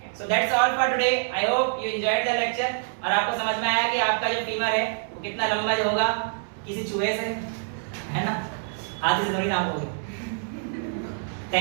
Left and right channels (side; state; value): left; silent; 60 dB below the other